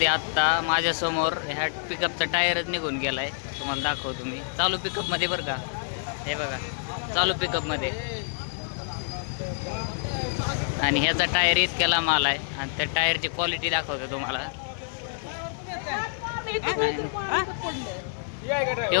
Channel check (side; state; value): right; silent; digital silence